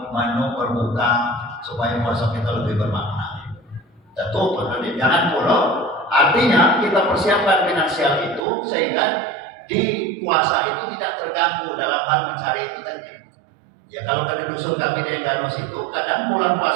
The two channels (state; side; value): drops out; left; at 8.4 s